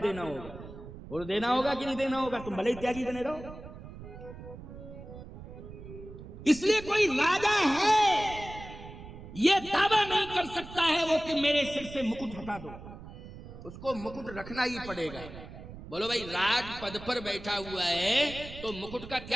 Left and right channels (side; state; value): right; noise; rumble, 14 dB below the sound